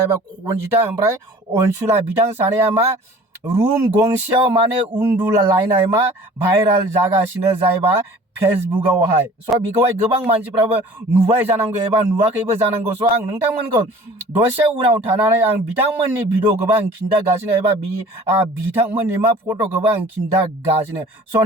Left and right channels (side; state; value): both; normal; correlation 0.47